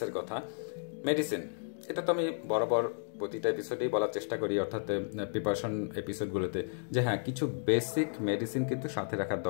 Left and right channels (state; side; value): silent; right; 56 dB below the other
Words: কথা। মেডিসিন, এটা তো আমি বরাবর প্রতিটা এপিসোডেই বলার চেষ্টা করি, অর্থাৎ প্রিপারেশন এপিসোডগুলোতে, যে হ্যাঁ, কিছু বেসিক মেডিসিন কিন্তু সাথে রাখার